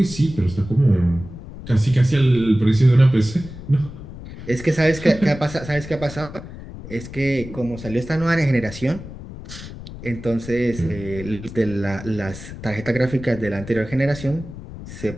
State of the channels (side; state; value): left; noise; rumble, 13 dB below the sound